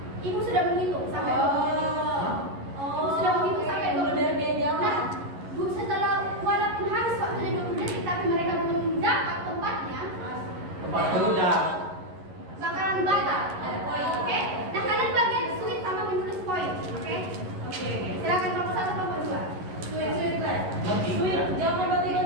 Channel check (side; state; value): left; late; 11 ms